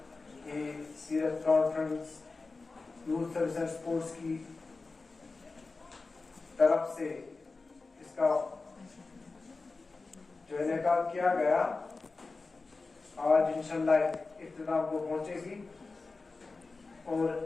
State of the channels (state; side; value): quieter; right; 3.8 dB